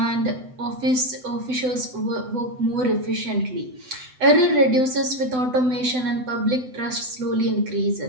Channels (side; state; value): left; late; 7.9 ms